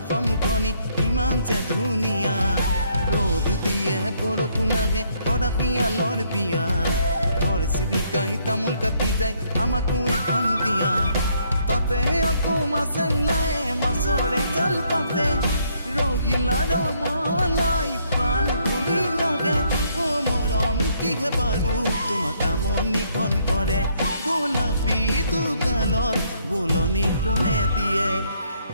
ইমান যে ধুনীয়া ৰ'দ দিয়ে বৰষুণ আহে অৰাশিয়ালৰ বিয়া ঘৰ চিৰিকাই তামোল কাটি যায় আমাকো এখন দিয়া তাতে আকৌ মাছে ওলায় মাছৰে জাল পাতে ৰহিলা ৰমলাই প্ৰাণ ঘূৰি লাগে অ মৰম কিহে বাৰু তোমাক আমনিখন কৰে গোলাপী দুগালত বোলনি কোনে দিয়ে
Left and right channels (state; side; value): inverted; both; correlation -0.69